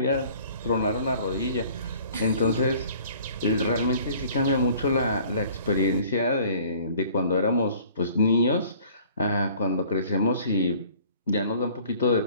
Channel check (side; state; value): both; inverted; correlation -0.53